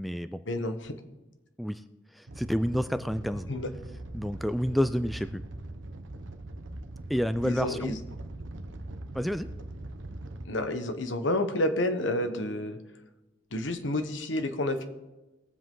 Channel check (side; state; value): both; normal; correlation 0.59